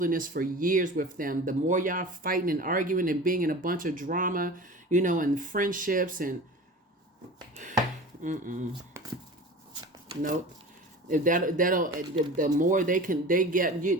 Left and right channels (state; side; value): normal; both; correlation 0.37